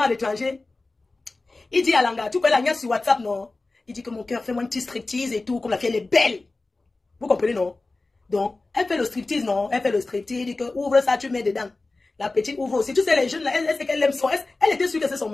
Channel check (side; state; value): right; quieter; 3.3 dB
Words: à l'étranger, il dit à Langa, tu peux la niaque sur WhatsApp, non? Il dit que mon cœur, fais-moi une petite striptease et tout, comme la fille, elle est belle. Vous comprenez, non? Donc, elle fait le striptease, non? Elle fait le striptease, il dit que ouvre ça, tu mets dedans. La petite ouvre aussi. Tu sais, les jeunes, là, elle sait qu'elle aime son... Elle était sûre que c'est son